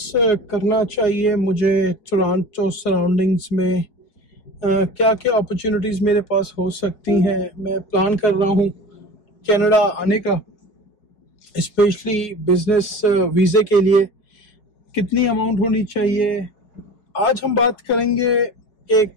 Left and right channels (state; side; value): late; right; 4.8 ms